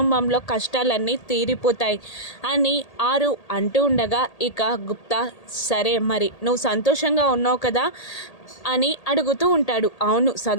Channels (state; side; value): late; right; 1.8 ms